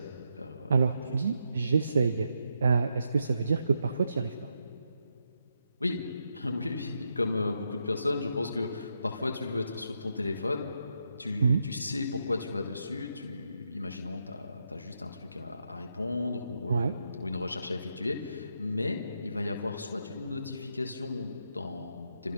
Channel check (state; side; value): inverted; both; correlation -0.82